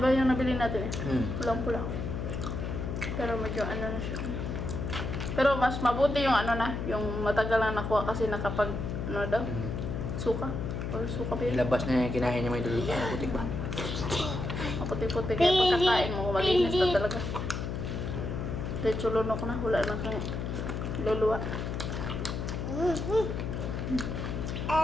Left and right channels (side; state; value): left; noise; hum, 3 dB below the sound